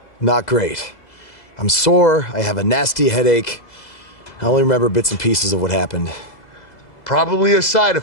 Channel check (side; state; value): right; late; 2.0 ms